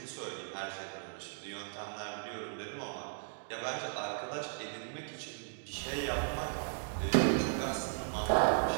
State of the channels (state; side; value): silent; left; digital silence